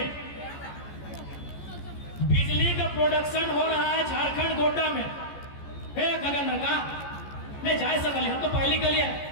बिजली का प्रोडक्शन हो रहा है झारखंड गोड्डा में। गगन का नहीं जा सकल, हम तो पहली के लिए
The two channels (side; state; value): right; late; 14 ms